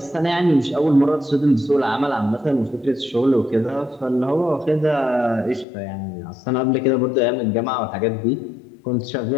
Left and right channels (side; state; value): right; drops out; at 5.7 s